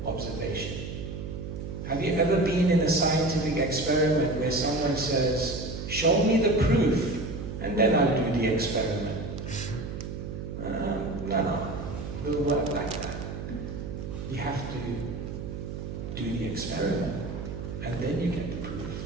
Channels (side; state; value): right; noise; hum, 7 dB below the sound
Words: observation. Have you ever been in a scientific experiment where someone says, show me the proof, and then I'll do the experiment? No, it doesn't work like that. You have to do the experiment, and then you get the proof.